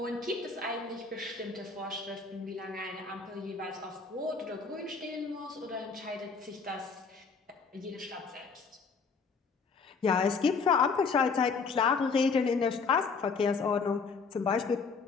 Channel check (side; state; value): right; quieter; 4.9 dB